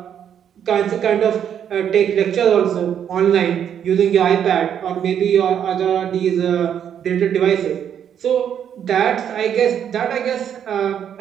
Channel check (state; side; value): quieter; left; 8.9 dB